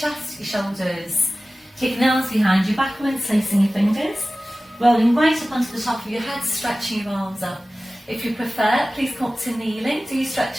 your shoulders. Taking the arms behind you, backwards, placing your fingers. Rolling right up onto the top of your head, stretching your arms up. If you prefer, please come up to kneeling. Do you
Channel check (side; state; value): both; normal; correlation 0.97